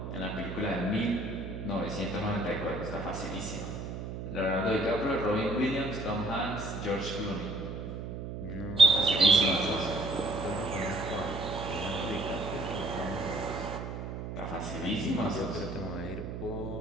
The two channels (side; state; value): right; noise; hum, 7 dB below the sound